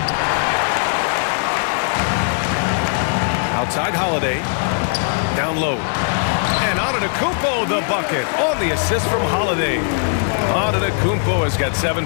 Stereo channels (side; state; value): right; silent; digital silence